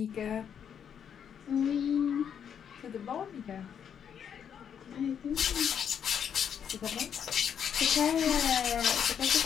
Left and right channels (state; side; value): quieter; right; 8.1 dB